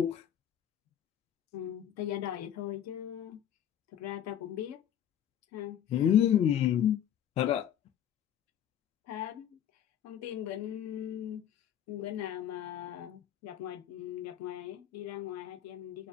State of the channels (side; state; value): right; quieter; 10.2 dB